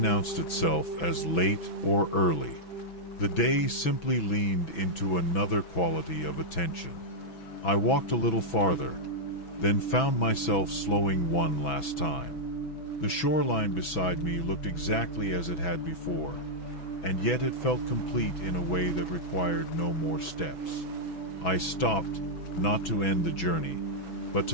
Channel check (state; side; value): late; right; 6.1 ms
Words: itself as late or early. The day simply leaned into another quality of attention. I walked a little farther, then found myself slowing one last time. The shoreline beside me looked exactly as it had before, and yet it felt complete in a way that required no more steps. I stopped, not to end the journey, but